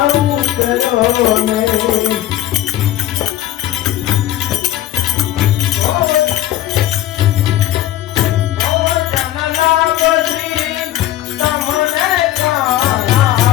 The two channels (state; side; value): quieter; right; 13.8 dB